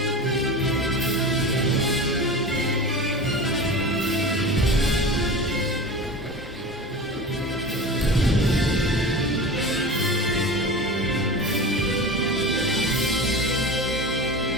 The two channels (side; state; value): both; normal; correlation 0.31